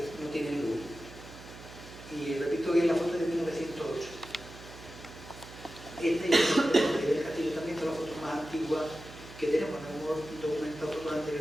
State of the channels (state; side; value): noise; right; hum, 16 dB below the sound